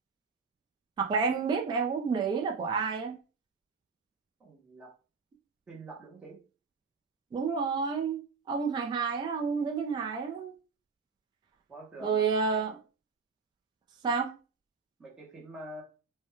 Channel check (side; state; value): left; quieter; 5.0 dB